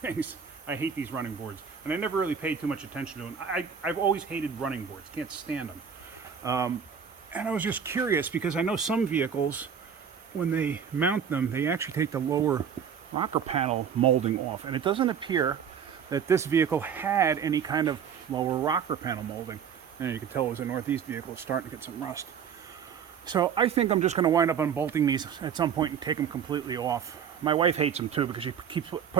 I hate these running boards. And I never really paid too much attention to them. I've always hated running boards. Can't stand them. And I was just curious, because I know some vehicles, when they mount them, they actually take the lower rocker panel molding off, and it doesn't appear that this vehicle had any kind of lower rocker panel molding. And you can tell it was a Northeast vehicle. It's starting to get some rust. So I think I'm just going to wind up unbolting these at some point and take them completely off. My wife hates them too because she keeps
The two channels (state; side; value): quieter; left; 7.4 dB